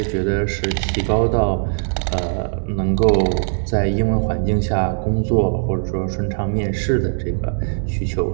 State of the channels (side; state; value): left; silent; digital silence